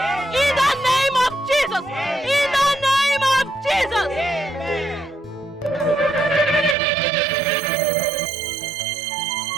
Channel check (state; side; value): drops out; left; at 6.8 s